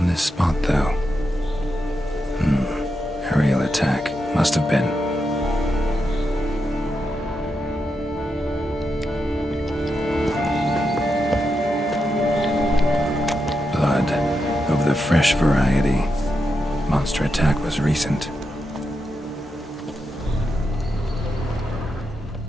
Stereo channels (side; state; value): both; normal; correlation 0.86